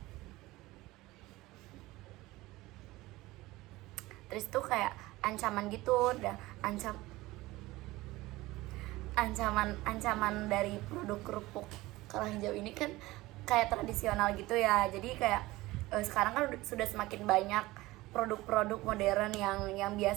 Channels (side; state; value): left; quieter; 19.1 dB